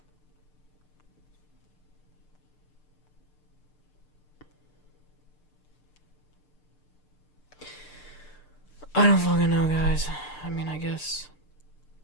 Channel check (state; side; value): late; right; 6.7 ms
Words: I don't fucking know, guys. I mean, I guess